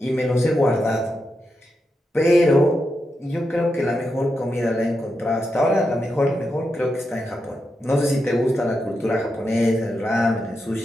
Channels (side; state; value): both; normal; correlation 0.86